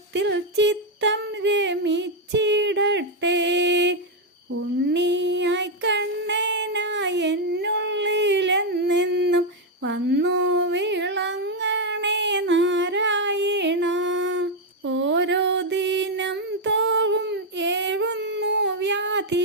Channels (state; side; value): normal; both; correlation 0.01